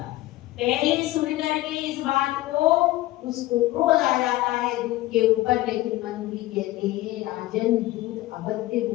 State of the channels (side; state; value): right; quieter; 17.3 dB